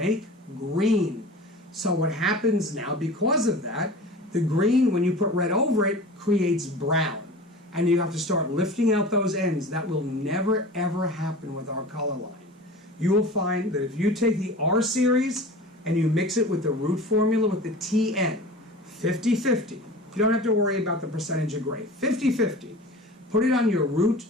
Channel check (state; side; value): normal; both; correlation 0.37